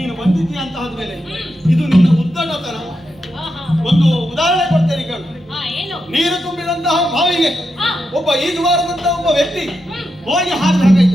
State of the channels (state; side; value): normal; both; correlation 0.86